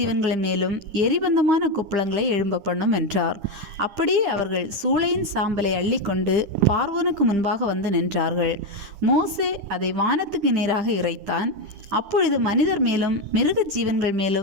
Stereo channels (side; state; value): left; late; 10 ms